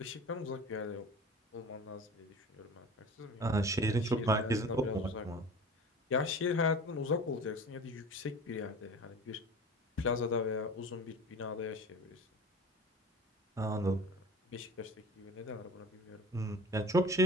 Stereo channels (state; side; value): normal; both; correlation 0.38